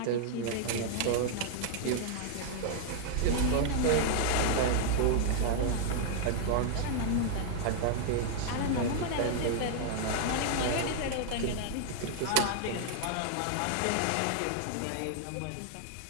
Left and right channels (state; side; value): different; both; correlation -0.01